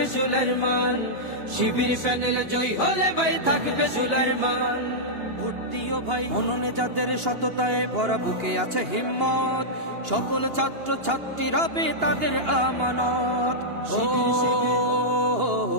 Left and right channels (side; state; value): left; late; 2.8 ms